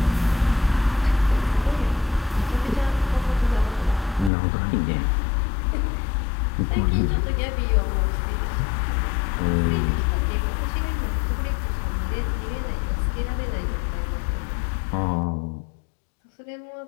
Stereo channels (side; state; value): right; drops out; at 4.3 s